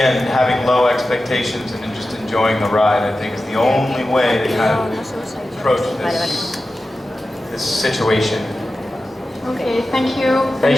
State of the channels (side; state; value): both; normal; correlation 0.93